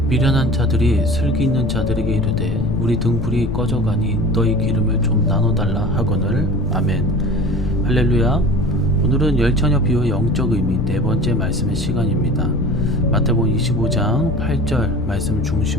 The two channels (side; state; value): left; noise; rumble, 5 dB below the sound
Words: 미련한 자들이 슬기 있는 자들에게 이르되 우리 등불이 꺼져가니 너희 기름을 좀 나눠달라 하거늘. 아멘. 할렐루야. 오늘은 열처녀 비유의 영적 의미 네 번째 말씀의 시간입니다. 마태복음 25장 8절 말씀